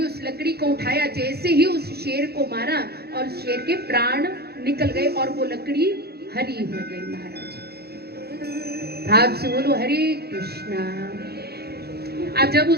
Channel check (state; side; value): late; left; 0.46 ms